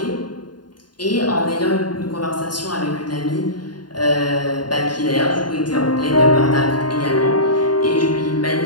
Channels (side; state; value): right; late; 0.70 ms